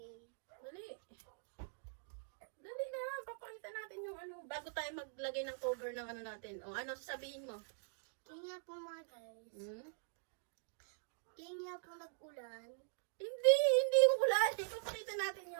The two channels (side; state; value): left; silent; digital silence